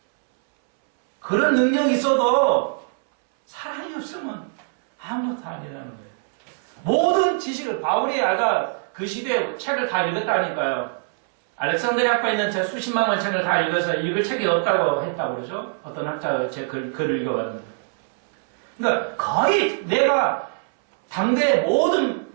그런 능력이 있어도 사랑이 없으면 아무것도 아니라는 거예요. 모든 지식을 바울이 아까 그 시대에 책을 다 읽었다니까요. 알렉산드리아 학파에 있는 제 수십만 권 책을 다 읽어서 읽을 책이 없다고 했다고 그러죠. 어떤 학자가 제 글을 읽어봤는데. 그러니까 거의 내가 당대의 모든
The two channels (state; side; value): silent; left; 64 dB below the other